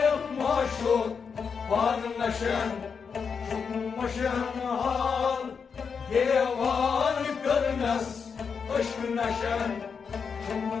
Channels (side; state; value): right; quieter; 6.0 dB